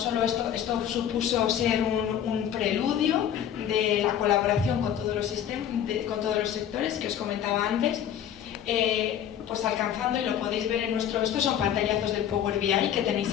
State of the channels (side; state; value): right; quieter; 9.8 dB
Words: esto supuso ser un preludio de la colaboración con todos los sectores que os comentaba antes, pues alcanzando, y lo podéis ver en estos son pantallazos del Power BI que tenéis